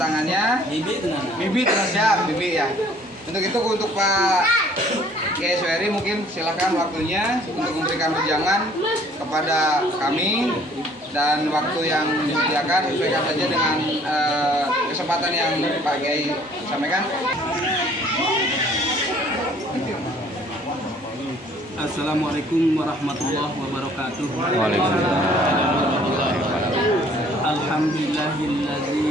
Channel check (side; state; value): both; normal; correlation 0.57